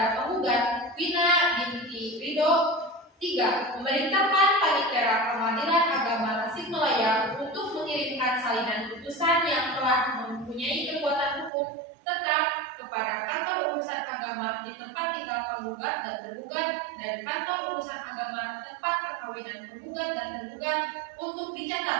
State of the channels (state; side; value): drops out; left; at 11.5 s